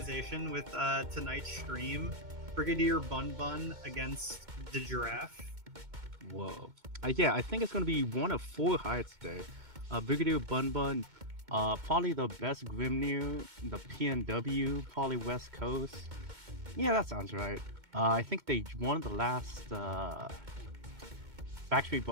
with tonight's stream. Brigadier Bun Bun against the Giraffe. Whoa. Yeah, I think it's going to be one of 4 hides today. Brigadier Bun Bun, probably the best Grimnir, the PNW, probably West Coast. Yeah, that sounds right. I think they won the last Factory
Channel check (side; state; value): left; late; 2.2 ms